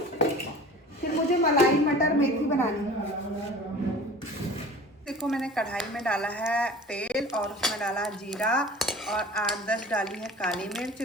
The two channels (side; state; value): both; normal; correlation 0.41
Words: फिर मुझे मलाई मटर मेथी बनानी है। देखो मैंने कढ़ाई में डाला है तेल और उसमें डाला जीरा और 8-10 डाली है काली मिर्च,